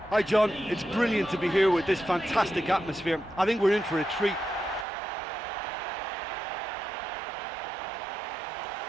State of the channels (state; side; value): drops out; left; at 4.9 s